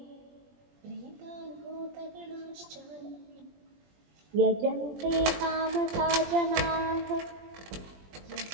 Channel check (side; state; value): left; late; 20 ms